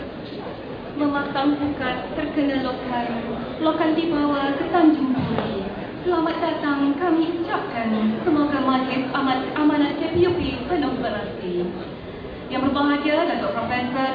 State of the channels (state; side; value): identical; both; correlation 1.00